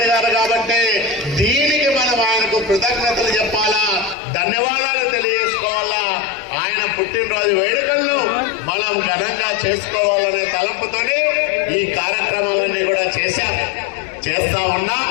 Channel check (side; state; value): right; drops out; at 4.2 s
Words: గారు. కాబట్టి దీనికి మనం ఆయనకు కృతజ్ఞతలు చెప్పాలా, ధన్యవాదాలు తెలియజేసుకోవాలా. ఆయన పుట్టినరోజు వేడుకలను మనం ఘనంగా చేసుకోవాలనే తలంపుతోనే ఈ కార్యక్రమాలన్నీ కూడా చేస్తా ఉన్నాం.